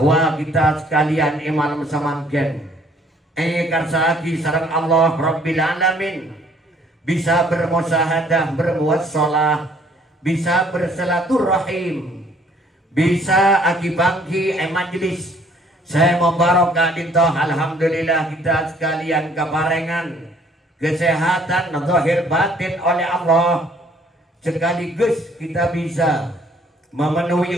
kita sekalian iman samangken karsaki sarang Allah Rabbil Alamin bisa bermusahadah, bermuassalah, bisa bersilaturahim bisa akibangki majlis saya mubarok Kak Dinto. Alhamdulillah kita sekalian keparengan kesehatan zahir batin oleh Allah, sekaligus kita bisa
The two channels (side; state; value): both; normal; correlation 0.61